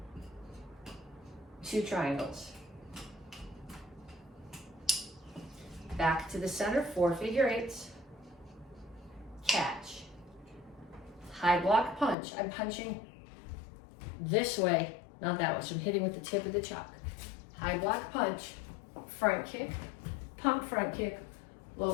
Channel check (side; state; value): right; drops out; at 12.2 s